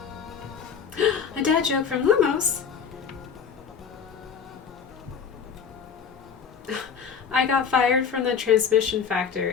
A dad joke from Lumos. I got fired from the transmission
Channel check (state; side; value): quieter; right; 6.8 dB